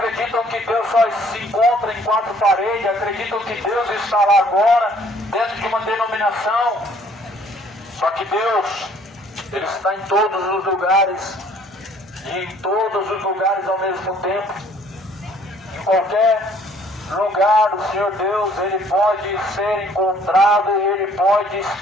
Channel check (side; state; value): both; normal; correlation 0.59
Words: que Deus só se encontra em quatro paredes, acreditam que Deus está lá agora, dentro de uma denominação. Só que Deus, Ele está em todos os lugares, e em todos os lugares ao mesmo tempo. Em qualquer lugar do Senhor Deus, Ele pode ser encontrado e Ele pode